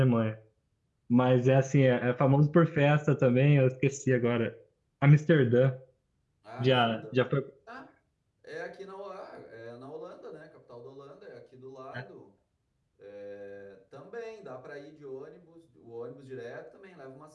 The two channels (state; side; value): identical; both; correlation 1.00